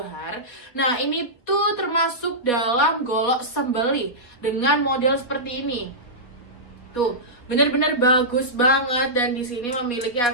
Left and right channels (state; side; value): late; right; 4.2 ms